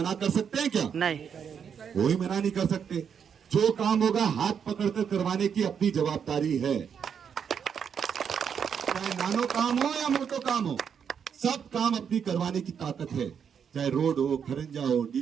कर सकते हैं क्या? नहीं, कोई मना नहीं कर सकते। जो काम होगा हाथ पकड़कर करवाने की अपनी जवाबदारी है। चाहे नानो काम हो या मोटो काम हो, सब काम अपनी करवाने की ताकत है। चाहे रोड हो, खरंजा हो,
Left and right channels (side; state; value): left; quieter; 7.4 dB